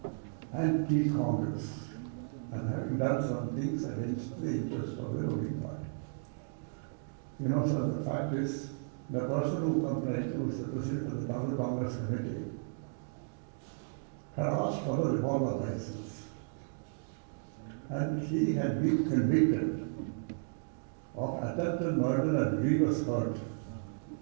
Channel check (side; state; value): left; silent; digital silence